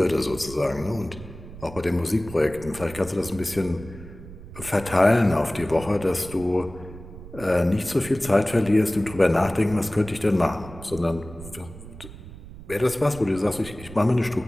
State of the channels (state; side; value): noise; right; rumble, 15 dB below the sound